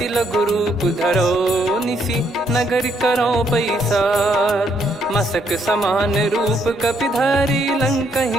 लघु रूप धरो निसी नगर करो पैसार मसक समान रूप कपिधारी लंकहि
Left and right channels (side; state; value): both; normal; correlation 0.72